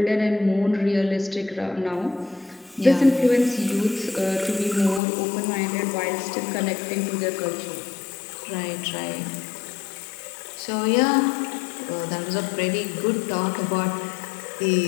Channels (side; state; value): right; drops out; at 5.0 s